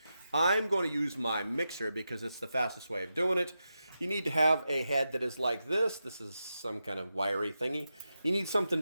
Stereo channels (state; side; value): inverted; both; correlation -0.89